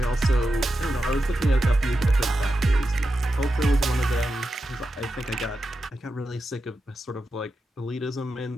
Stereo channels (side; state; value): both; normal; correlation 0.89